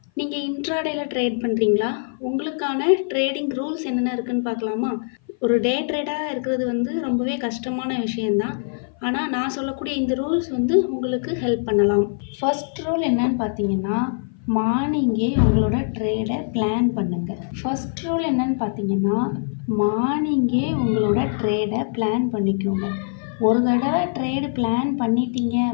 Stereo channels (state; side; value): silent; right; 56 dB below the other